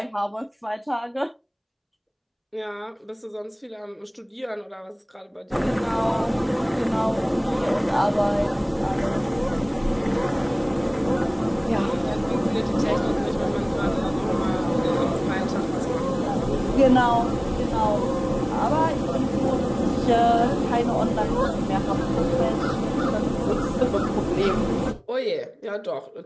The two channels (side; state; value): both; identical; correlation 1.00